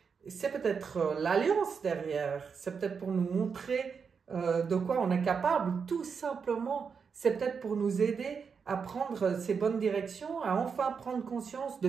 c'est peut-être l'alliance derrière, c'est peut-être pour nous montrer de quoi on est capable, tout simplement, c'est peut-être pour nous aider à prendre ces bonnes directions, à enfin prendre conscience de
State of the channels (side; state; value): left; quieter; 5.9 dB